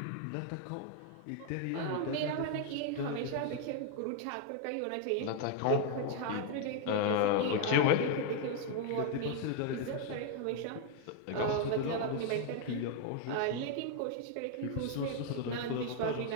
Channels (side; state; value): both; different; correlation 0.00